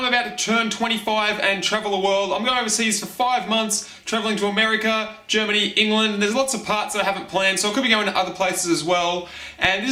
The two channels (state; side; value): identical; both; correlation 1.00